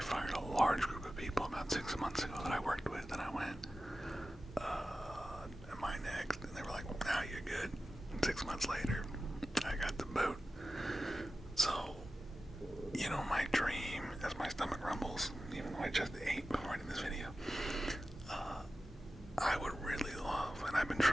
a large group of people about 6 months ago that I worked with, and I went, am I next? And they were like, now you're good. And 6 months later, I got the boot. So, you know, my dream, as my stomach rumbles, even though I just ate before I did this video, I would really love, and I've been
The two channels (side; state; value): both; normal; correlation 0.94